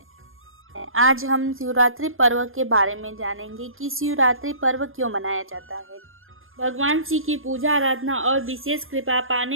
आज हम शिवरात्रि पर्व के बारे में जानेंगे कि शिवरात्रि पर्व क्यों मनाया जाता है। भगवान शिव की पूजा आराधना और विशेष कृपा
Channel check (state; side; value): late; left; 0.60 ms